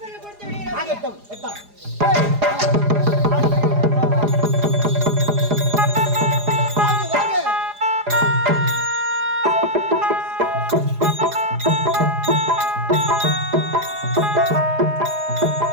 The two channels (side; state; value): left; late; 4.9 ms